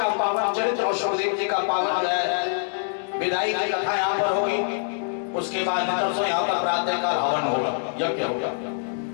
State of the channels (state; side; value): silent; right; digital silence